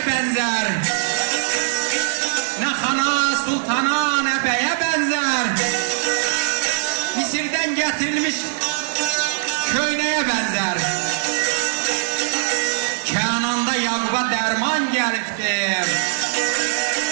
bənzər? Nə xana, sultana, nə bəyə bənzər? Misirdən gətirilmiş köynəyə bənzər. Kənanda Yaquba dərman gəlibdi.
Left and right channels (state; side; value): silent; left; digital silence